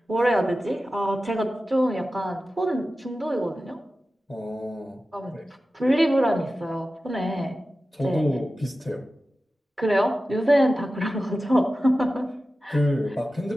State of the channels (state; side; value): normal; both; correlation 0.94